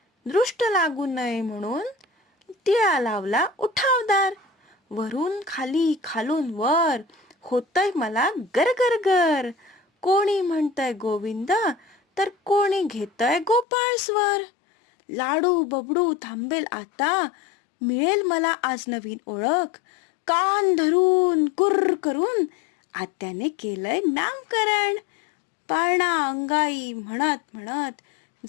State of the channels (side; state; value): right; drops out; at 13.7 s